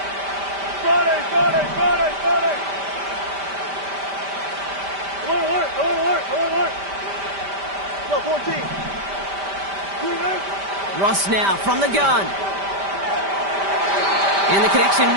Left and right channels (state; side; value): late; left; 5.1 ms